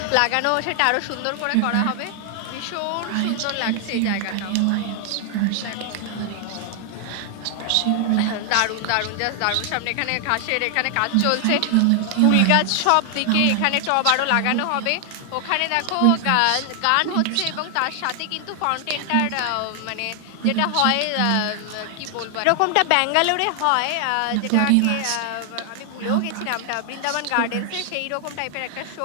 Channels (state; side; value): different; both; correlation 0.00